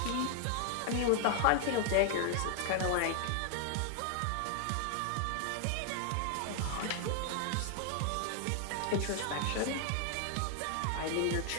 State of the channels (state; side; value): different; both; correlation 0.00